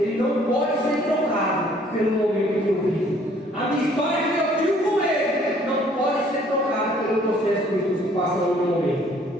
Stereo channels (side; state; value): both; normal; correlation 0.59